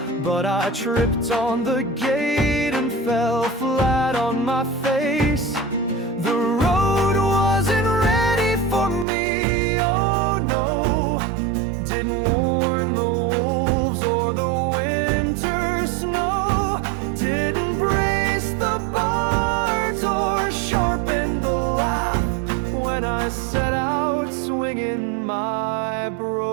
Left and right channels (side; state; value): left; drops out; at 9.1 s